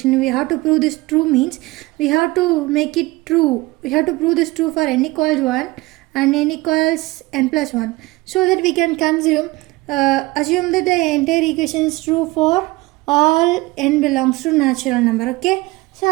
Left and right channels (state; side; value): quieter; left; 21.4 dB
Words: we have to prove this true means we have to make it true. We have to prove this true for n equals 1 and n equals n plus 1, so that we can assume that the entire equation is true for all n belongs to natural number. Okay,